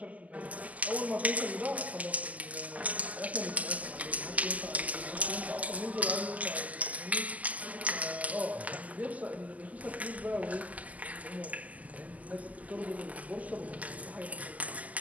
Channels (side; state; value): left; late; 0.075 ms